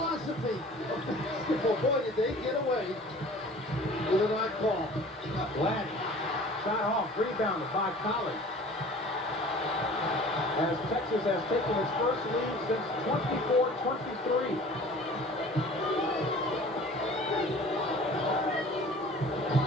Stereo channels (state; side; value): normal; both; correlation 0.45